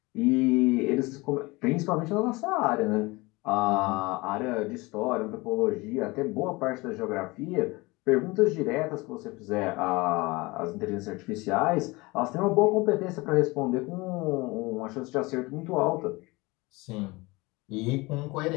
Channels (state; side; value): quieter; right; 23.5 dB